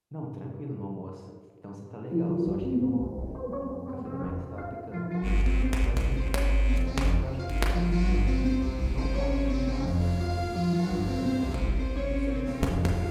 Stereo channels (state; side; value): identical; both; correlation 1.00